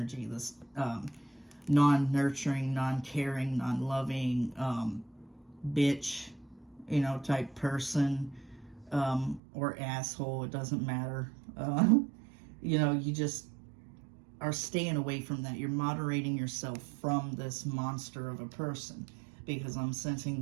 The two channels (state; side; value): drops out; left; at 9.4 s